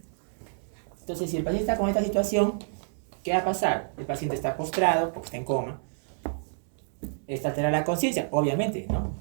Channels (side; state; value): left; silent; digital silence